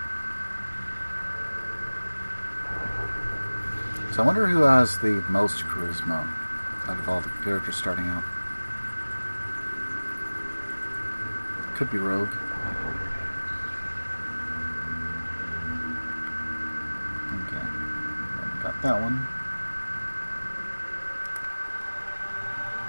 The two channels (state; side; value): inverted; both; correlation -1.00